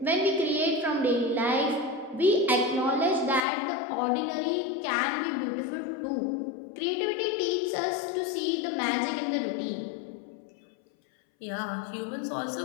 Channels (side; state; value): right; drops out; at 3.4 s